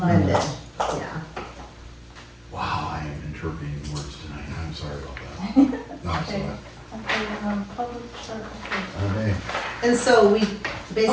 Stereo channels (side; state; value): both; identical; correlation 1.00